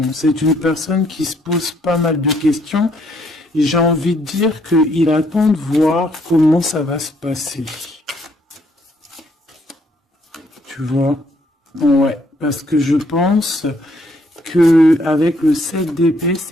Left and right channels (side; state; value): both; normal; correlation 0.68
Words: C'est une personne qui se pose pas mal de questions. J'ai envie de dire qu'il attend de voir comment ça va se passer. Tu vois? Ouais, parce que je pense que avec le 7 d'épée,